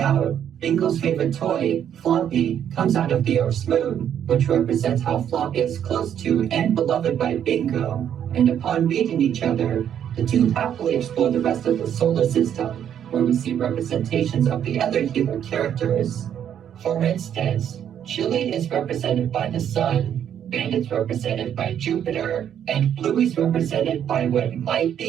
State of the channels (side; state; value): left; quieter; 9.4 dB